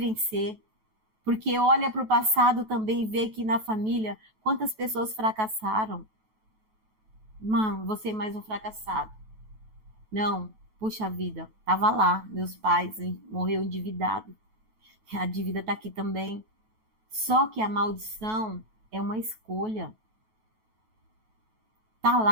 porque olha para o passado também e vê que na família quantas pessoas fracassaram. Mano, você é mais um fracassado. Não, puxa vida, tava lá, meus pais morreu endividado. A dívida está aqui também. Só que a maldição é uma escolha. Tá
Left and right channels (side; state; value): left; late; 9.2 ms